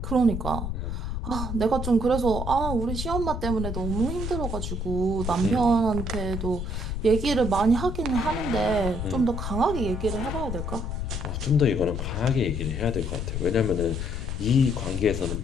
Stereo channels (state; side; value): noise; left; rumble, 4 dB below the sound